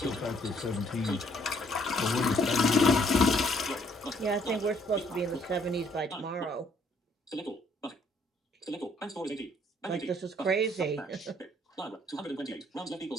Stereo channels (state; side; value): normal; both; correlation 0.65